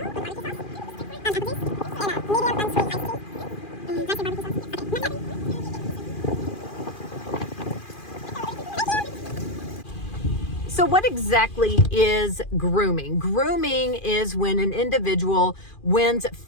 So what exactly is grooming? Grooming is when an individual wins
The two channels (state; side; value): late; right; 2.4 ms